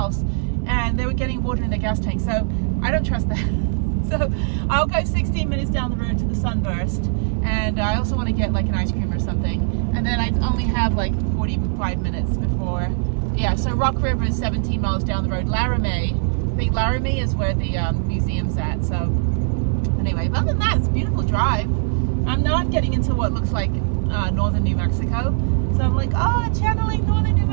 and they were getting water in their gas tank. So I don't trust that. So I'll go 16 minutes down the road to the Sunburst and I also want to get like an ice cream or something. And then I only have like 45 minutes before. Yeah, so Rock River is 17 miles down the road. Laramie, I think Laramie is where the museum's at. So anyway, but other than that, it's a beautiful drive. Now I'm getting into what looks like northern New Mexico. So I'm like, oh, channeling northern New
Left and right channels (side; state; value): left; silent; digital silence